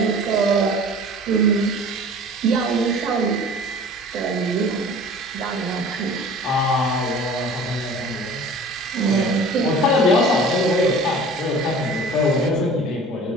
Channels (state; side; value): normal; both; correlation 0.44